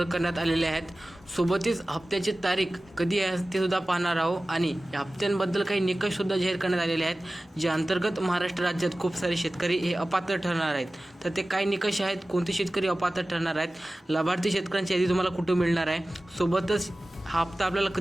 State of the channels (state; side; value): normal; both; correlation 0.97